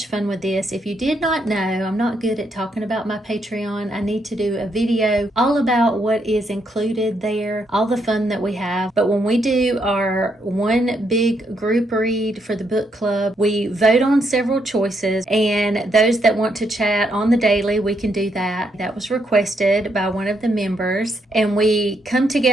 fun with this. If you did not know, I'm not good at talking about my Patreon. I need to do a video all about what is included there, all the fun that we have. But when we do our one big group read for the book club, we vote on several choices, and those that want to chat on the daily, we can do that. That was requested by one of the members. And we come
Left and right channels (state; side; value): normal; both; correlation 0.77